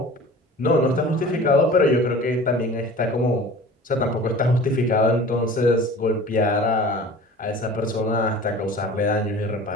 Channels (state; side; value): normal; both; correlation 0.42